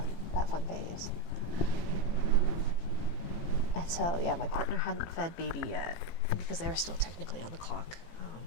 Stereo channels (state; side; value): late; right; 18 ms